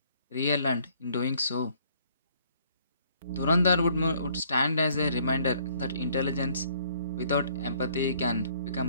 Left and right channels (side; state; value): both; inverted; correlation -0.63